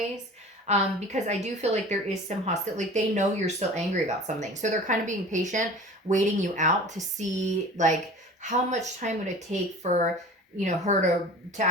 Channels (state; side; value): normal; both; correlation 0.41